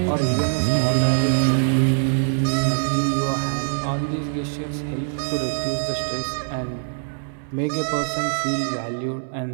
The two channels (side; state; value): left; silent; digital silence